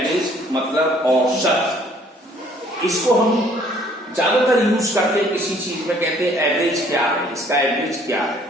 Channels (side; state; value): both; normal; correlation 0.59